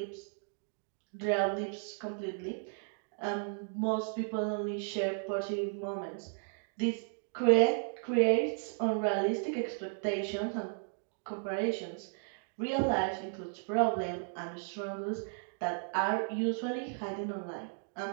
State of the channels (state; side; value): silent; left; 55 dB below the other